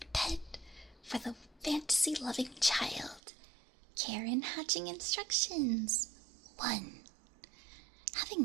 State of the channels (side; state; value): left; drops out; at 3.2 s